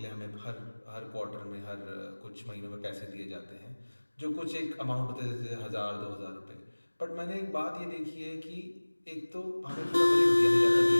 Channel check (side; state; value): both; inverted; correlation -1.00